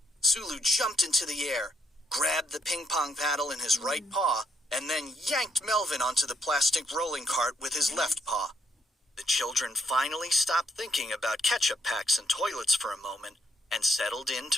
Sulu jumped into the air, grabbed the ping-pong paddle in his right paw, and then yanked Melvin onto the plastic rolling cart with his left paw. The children finally stopped thinking about ketchup packs and toilets for a moment and settled in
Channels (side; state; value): both; normal; correlation 0.73